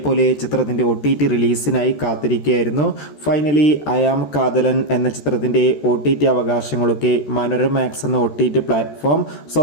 ചിത്രത്തിൻ്റെ OTT റിലീസിനായി കാത്തിരിക്കുകയായിരുന്നു. ഫൈനലി അയാം കാതലൻ എന്ന ചിത്രത്തിൻ്റെ OTT അവകാശങ്ങളൊക്കെ മനോരമാക്സ് എന്ന OTT പ്ലാറ്റ്ഫോം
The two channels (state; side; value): late; right; 13 ms